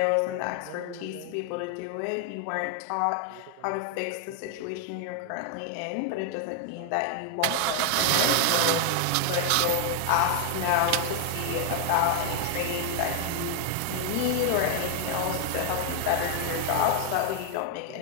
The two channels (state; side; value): different; both; correlation 0.00